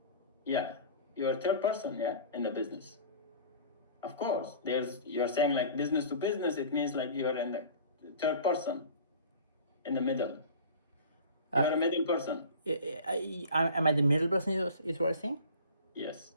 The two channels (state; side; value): inverted; both; correlation -0.41